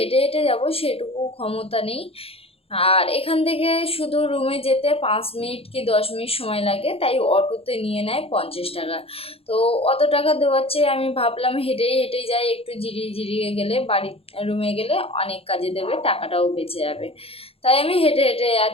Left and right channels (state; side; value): late; right; 0.28 ms